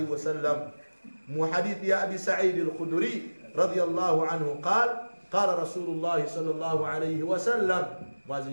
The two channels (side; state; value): both; inverted; correlation -1.00